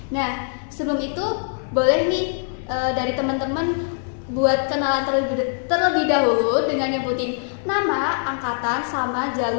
Nah, sebelum itu boleh nih dari teman-teman buat kenalan terlebih dahulu dengan nyebutin nama, angkatan, sama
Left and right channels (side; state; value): right; silent; digital silence